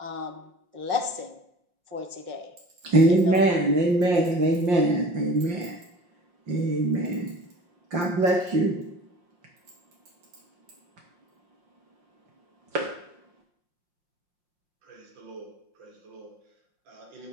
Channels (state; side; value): late; left; 5.6 ms